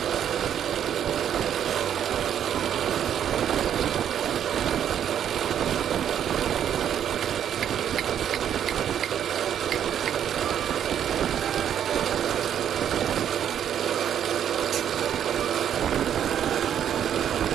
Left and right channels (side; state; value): left; quieter; 9.5 dB